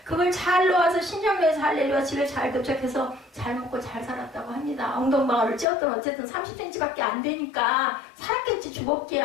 그걸 잘 놓아서 신정로에서 할렐루야 집에 잘 도착해서 잘 먹고 잘 살았다고 합니다. 엉덩방아를 찧었던 어쨌든 30cm밖에 안 되니까 살았겠지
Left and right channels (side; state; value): right; drops out; at 5.7 s